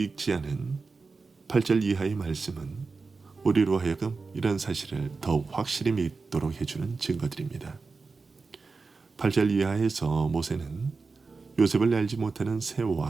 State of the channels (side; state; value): left; quieter; 4.3 dB